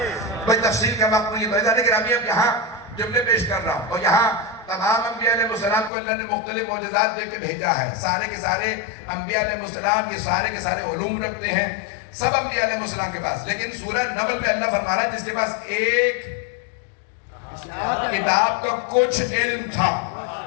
بھئی تفصیل کا وقت نہیں ہے لیکن ابھی اب یہاں جملے پیش کر رہا ہوں اور یہاں تمام انبیاء علیہ السلام کو اللہ نے مختلف معجزات دے کے بھیجا ہے سارے کے سارے انبیاء علیہ السلام یہ سارے کے سارے علوم رکھتے ہیں سب انبیاء علیہ السلام کے پاس لیکن سورہ نمل میں اللہ فرما رہا ہے جس کے پاس ایک کتاب کا کچھ علم تھا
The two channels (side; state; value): right; drops out; at 5.9 s